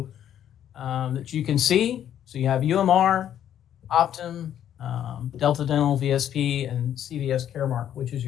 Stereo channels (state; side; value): quieter; right; 10.4 dB